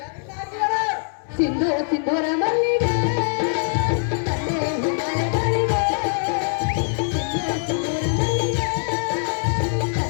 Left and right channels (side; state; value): right; silent; digital silence